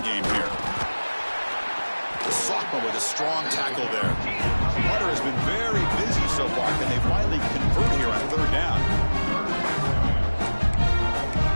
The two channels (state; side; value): inverted; both; correlation -1.00